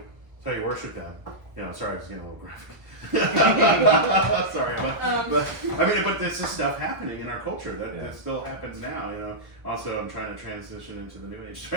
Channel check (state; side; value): late; left; 1.1 ms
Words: worship them. You know, sorry, I was getting a little graphic. Sorry, but this is stuff happening in our culture that still happens now. You know. Also, I'm trying to transition into the New Age.